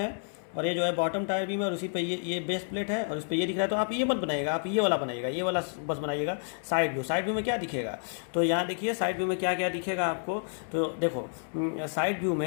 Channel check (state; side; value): silent; right; 58 dB below the other